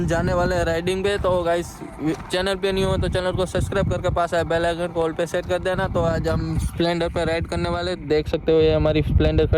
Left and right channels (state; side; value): identical; both; correlation 1.00